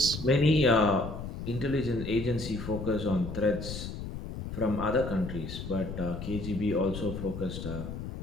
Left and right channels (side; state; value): left; noise; rumble, 7 dB below the sound